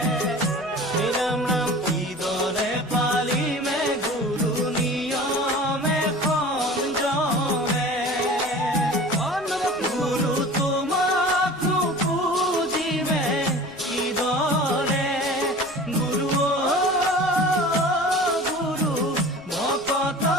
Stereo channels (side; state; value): left; noise; rumble, 26 dB below the sound